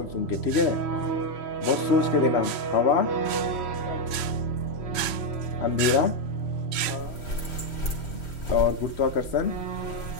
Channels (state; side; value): late; right; 3.1 ms